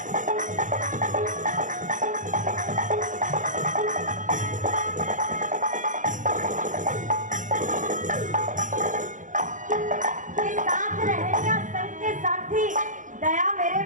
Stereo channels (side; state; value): left; late; 0.37 ms